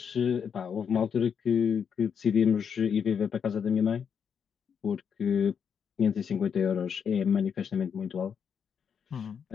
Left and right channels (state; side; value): quieter; right; 7.2 dB